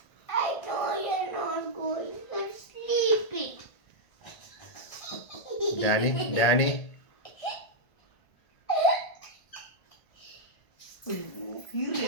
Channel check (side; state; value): right; late; 1.4 ms